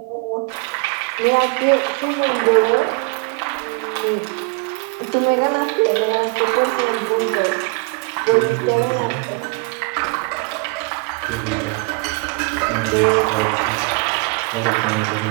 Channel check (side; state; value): left; quieter; 31.3 dB